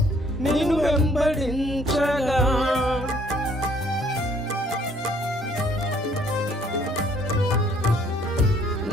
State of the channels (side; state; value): both; normal; correlation 0.62